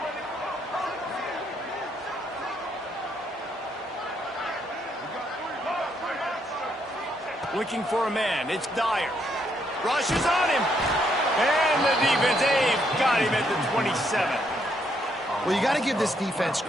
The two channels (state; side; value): normal; both; correlation 0.74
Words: Looking for a man. It's Dyer. Rushes on him. And the defense, they've got him at the 27. Well, you got to give this defense